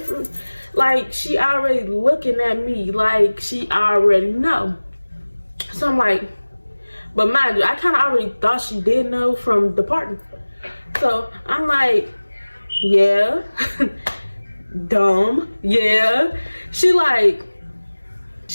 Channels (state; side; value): inverted; both; correlation -1.00